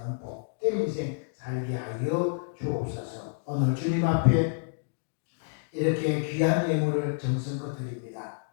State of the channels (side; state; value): right; silent; digital silence